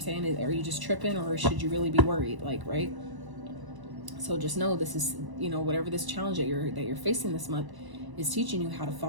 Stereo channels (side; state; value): left; late; 1.0 ms